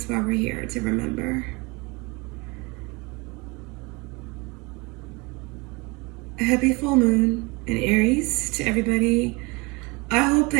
why we're here, to remember. A happy full moon in Aries to everybody. I hope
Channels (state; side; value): quieter; left; 26.6 dB